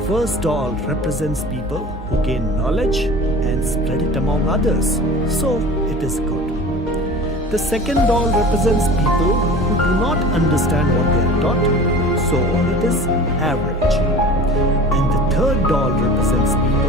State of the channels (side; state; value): both; normal; correlation 0.39